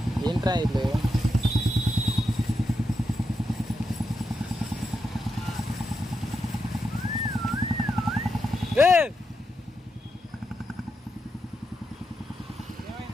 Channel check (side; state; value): both; normal; correlation 0.85